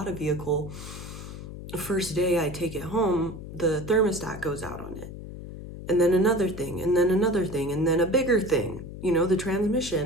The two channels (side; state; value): left; noise; hum, 11 dB below the sound